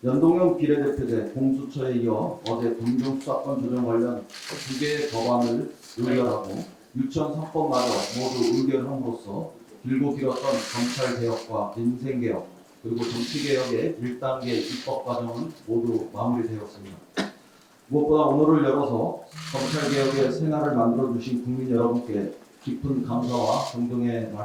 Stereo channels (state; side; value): identical; both; correlation 1.00